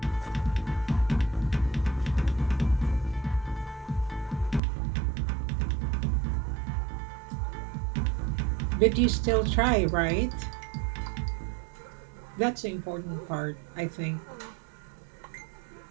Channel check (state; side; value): drops out; left; at 4.6 s